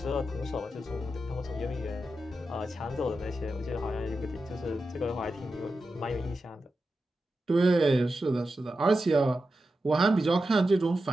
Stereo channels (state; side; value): normal; both; correlation 0.90